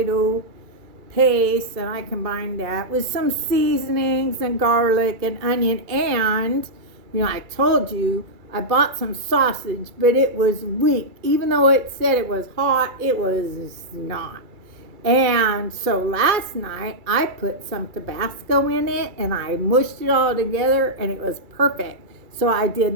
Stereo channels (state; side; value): late; left; 2.3 ms